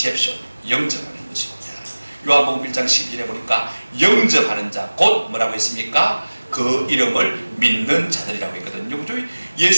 영접하는 것입니다. 요한복음 1장 12절에 보니까 영접하는 자, 곧 뭐라고 했습니까? 그 이름을 믿는 자들이라고 했거든요.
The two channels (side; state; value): both; inverted; correlation -1.00